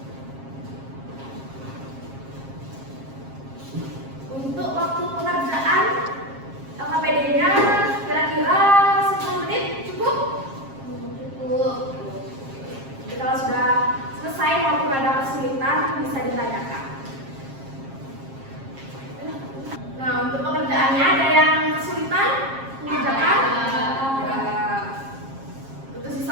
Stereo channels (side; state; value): left; late; 7.4 ms